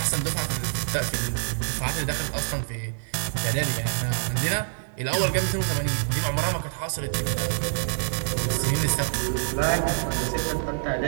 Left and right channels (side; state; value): left; silent; digital silence